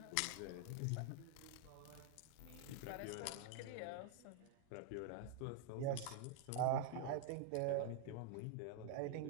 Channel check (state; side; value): different; both; correlation 0.00